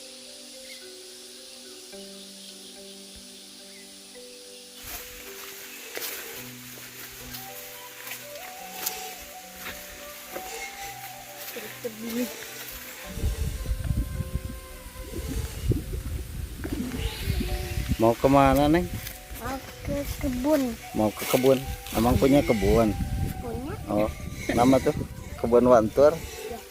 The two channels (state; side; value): identical; both; correlation 1.00